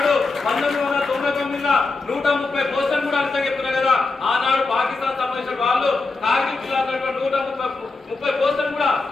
1999 130 పోస్టులు కూడా అంతా చెప్తున్నా కదా. ఆనాడు పాకిస్తాన్ సంబంధించిన వాళ్ళు కార్గిల్ జిల్లాలో 130 పోస్టులు కూడా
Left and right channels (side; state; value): right; quieter; 3.7 dB